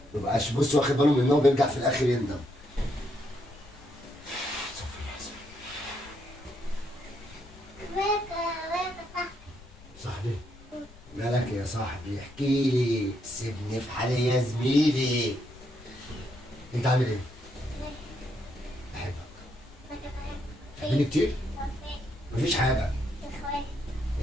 مبقاش بص واخد باله منها وبيرجع في الاخر يندم. صاحبي مالك يا صاحبي؟ احكي لي، سيبني في حالي يا زميلي. انت عامل ايه؟ بحبك. بتحبني كتير؟ مفيش حاجة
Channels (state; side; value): noise; left; rumble, 21 dB below the sound